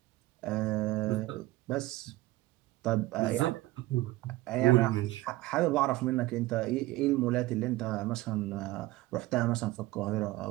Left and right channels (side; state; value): left; quieter; 18.2 dB